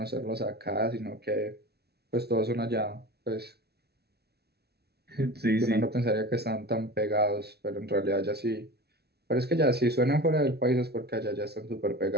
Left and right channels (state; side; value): late; left; 0.47 ms